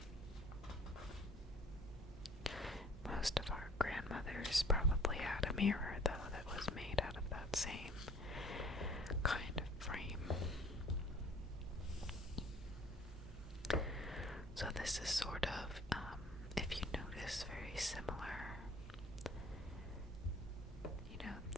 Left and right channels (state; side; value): normal; both; correlation 0.53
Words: Most of our grandmothers probably had a mirror, though, that was made out of that same kind of frame. So this is sort of, if you notice, very similar. You know,